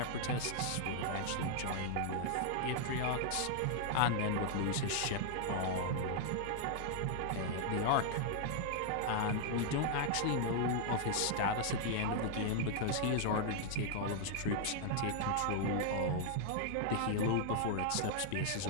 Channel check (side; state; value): both; different; correlation 0.00